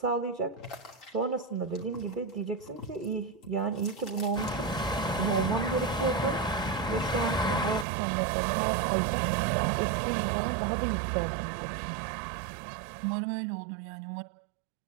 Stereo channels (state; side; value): drops out; left; at 7.9 s